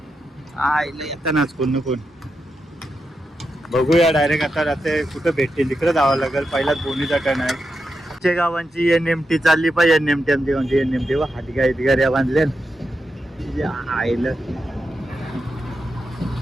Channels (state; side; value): normal; both; correlation 0.87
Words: येतानाच कोण ना कोण. बघूया डायरेक्ट आता राहते कुठं भेटते तिकडे जावं लागेल. पहिलाच बोनीचा टर्न आहे. आमच्या गावांची NMT चालली पाहिजे. NMT आमची कोणती NMT व हातगाड्या बांधल्या आईला.